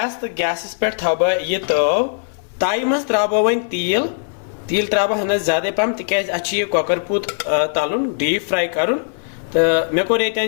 तो गैस पे थव यह तव ताई मज त्रा वन तेल त्रा हना ज्यादा पहम तिकाज अच्छी कॉकर पूत तलन डीप फ्राई कर तो मे कोर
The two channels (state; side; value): silent; right; 59 dB below the other